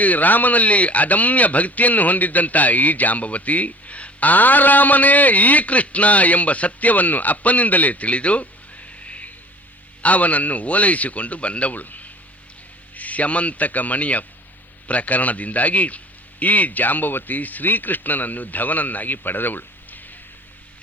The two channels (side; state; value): both; normal; correlation 0.46